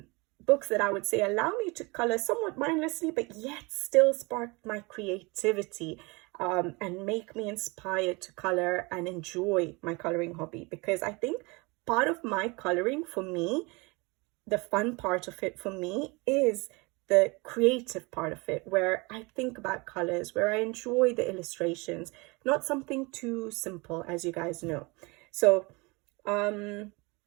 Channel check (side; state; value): left; quieter; 26.7 dB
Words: books that I would say allow me to color somewhat mindlessly but yet still spark my creativity, and make me inspired to color and enjoy my coloring hobby. Because I think part of my coloring, for me, the fun part of it for me is the creative part of it, where I think about colors, where I enjoy the illustrations, not something too simple, as you guys know. So